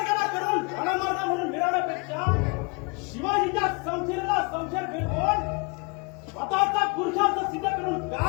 करून घणामार्ग म्हणून मिळवण्यापेक्षा शिवाजीच्या संशयाला संशय फिरवून स्वतःचा पुरुषार्थ सिद्ध करून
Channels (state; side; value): quieter; right; 30.4 dB